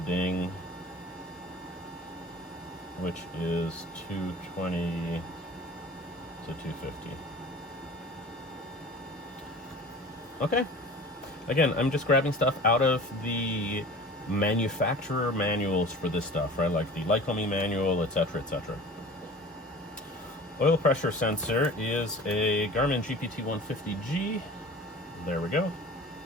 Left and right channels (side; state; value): both; normal; correlation 0.41